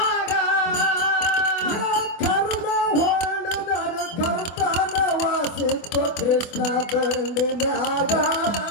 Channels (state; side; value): late; right; 24 ms